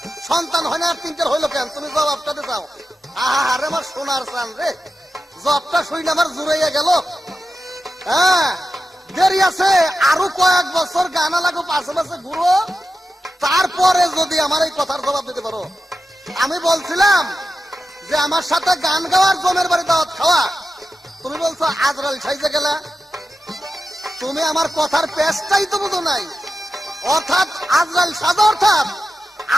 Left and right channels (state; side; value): normal; both; correlation 0.91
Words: সন্তান হয় না, 3টার হইলো কেন? তুমি জবাবটা দিতে চাও? আরে আমার সোনার চান রে, জবটা শুই না আমার জুড়াইয়া গেল। হ্যাঁ, দেরি আছে, আরো কয়েক বছর গানা লাগো, পাশে পাশে ঘুরো, তারপরে যদি আমার এই কথার জবাব দিতে পারো। আমি বলছিলাম যে আমার সাথে গান গাওয়ার জমের বাড়ি দাওয়াত খাওয়া, তুমি বলছো আজরাল সাইজে গেলা। তুমি আমার কথার পেশটাই তো বুঝো নাই। অর্থাৎ আজরাল সাজা, অর্থাৎ